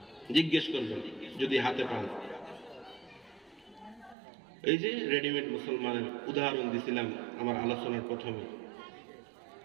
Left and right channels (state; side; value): drops out; left; at 4.2 s